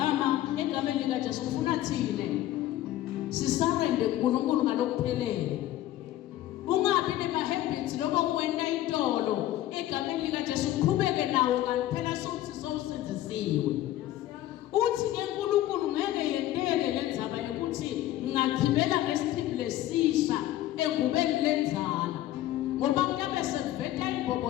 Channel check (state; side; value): quieter; right; 14.1 dB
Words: egameni lika Jesu ufuna thine sisarende kuNkulunkulu ngalokuphelele. Ungabi nema-habits loba kuwena intolo egameni lika Jesu uqhubeke nawo kanti phela sokuthi sowusenzisiwe. Uthi ke uNkulunkulu ngeke yendele lenzaba yokuthi ngachibela ngesichibile lesisha engubeni lenza